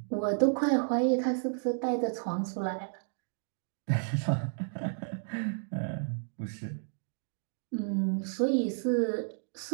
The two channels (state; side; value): silent; left; digital silence